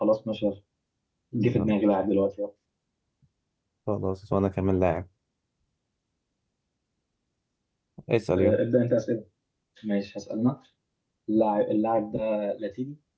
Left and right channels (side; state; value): both; identical; correlation 1.00